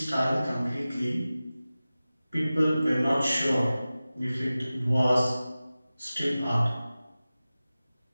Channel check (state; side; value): inverted; both; correlation -0.96